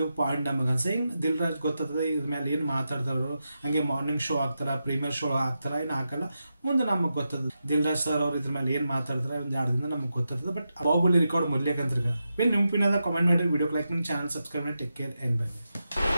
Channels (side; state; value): both; inverted; correlation -0.88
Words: ಪಾಯಿಂಟ್ ನಮಗೆ ಅನ್ಸ. ಹಿಂಗೆ ದಿಲ್ ರಾಜ್ ಗೊತ್ತಾಗ್ತದೆ ಇದ್ರ ಮೇಲೆ ಏನು ಮಾತಾಡ್ತಾರೋ. ಹಂಗೆ ಮಾರ್ನಿಂಗ್ ಶೋ ಆಗ್ತಾರ, ಪ್ರೀಮಿಯರ್ ಶೋ ಆಗ್ತಾರ, ಏನು ಹಾಕಲ್ಲ. ಮುಂದೆ ನಮಗೆ ಗೊತ್ತದ ದಿಲ್ ರಾಜ್ ಸರ್ ಅವ್ರು ಇದ್ರ ಮೇಲೆ ಏನು ಮಾತಾಡ್ತಾರೆ, ಒಂದು 2 ದಿನ ನಮಗೆ ಗೊತ್ತಾಗ್ತದೆ. ಬಟ್ ಬಾಹುಬಲಿ ರೆಕಾರ್ಡ್ ಮೊದ್ಲೇಕಂತ ನೆನಪಿನಾದ ಕಾಮೆಂಟ್ ಮಾಡಿ, ವಿಡಿಯೋ ಲೈಕ್ ಮಾಡಿ, ಚಾನಲ್ ಸಬ್ಸ್ಕ್ರೈಬ್ ಮಾಡಿ. Take care and by.